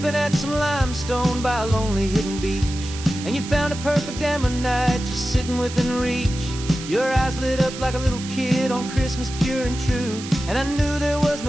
at some limestone by a lonely hidden beach, and you found a perfect ammonite just sitting within reach. Your eyes lit up like a little kid on Christmas, pure and true, and I knew there was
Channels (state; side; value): noise; right; hiss, 12 dB below the sound